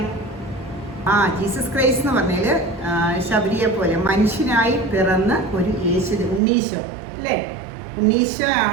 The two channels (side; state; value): left; drops out; at 6.4 s